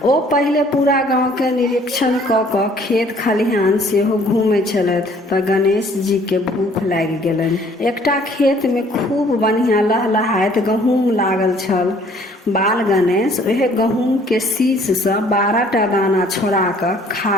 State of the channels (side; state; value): both; normal; correlation 0.58